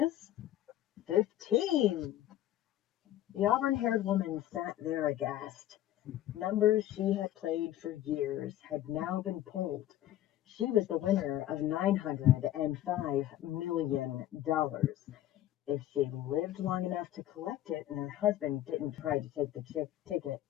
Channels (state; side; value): quieter; right; 13.1 dB